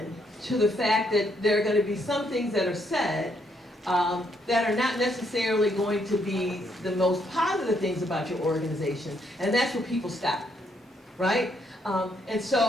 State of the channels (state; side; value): normal; both; correlation 0.73